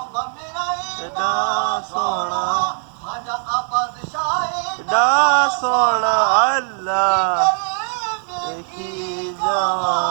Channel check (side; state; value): left; silent; 58 dB below the other